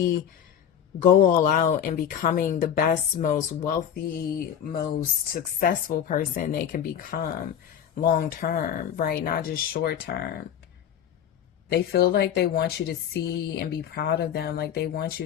go all out and becoming the best, most wealthy, most successful person they can become long term, right? Not just short term. They feel like they want you to see and be proud of them. Like, they want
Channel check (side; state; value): right; quieter; 9.2 dB